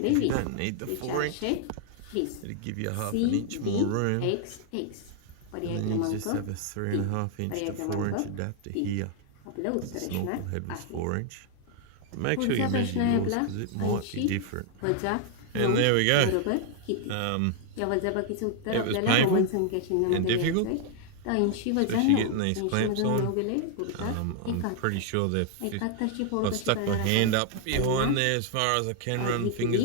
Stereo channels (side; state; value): both; different; correlation 0.00